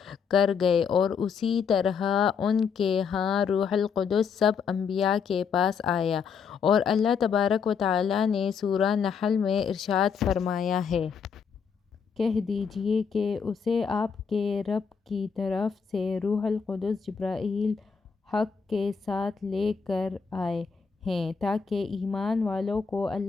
کر گئے، اور اسی طرح ان کے ہاں روح القدس سب انبیاء کے پاس آیا۔ اور اللہ تبارک و تعالیٰ نے سورہ نحل میں ارشاد فرمایا ہے، کہہ دیجئے کہ اسے آپ کے رب کی طرف سے روح القدس جبرائیل حق کے ساتھ لے کر آئے ہیں تاکہ ایمان والوں کو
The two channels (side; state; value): right; quieter; 6.2 dB